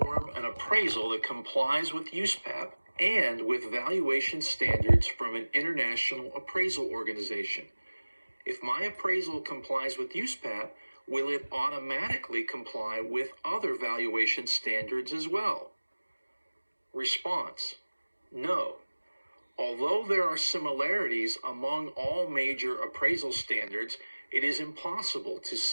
an appraisal that complies with USPAP and with valuation standards from an international appraisal organization. If my appraisal complies with USPAP, will it automatically comply with other valuation standards as well? Response. No. Although there are similarities among all major appraisal standards, it is impossible to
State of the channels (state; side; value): inverted; both; correlation -1.00